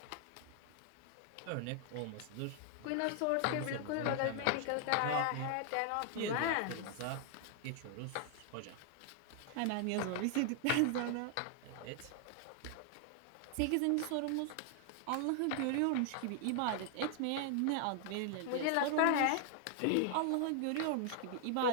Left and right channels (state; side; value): different; both; correlation 0.00